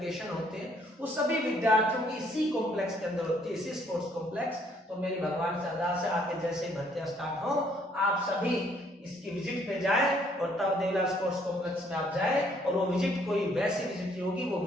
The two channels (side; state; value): both; normal; correlation 0.65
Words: होते हैं, वो सभी विद्यार्थियों की इसी कॉम्प्लेक्स के अंदर होती है, इसी स्पोर्ट्स कॉम्प्लेक्स। तो मेरी भगवान से अरदास है, आके जैसे ही भर्तियां स्टार्ट हो आप सभी इसकी विजिट पे जाए और तब देवीलाल स्पोर्ट्स कॉम्प्लेक्स में आप जाए। और वो विजिट कोई वैसी विजिट नहीं होगी, वो